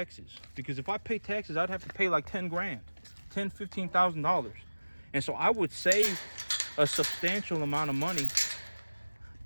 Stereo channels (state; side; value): inverted; both; correlation -1.00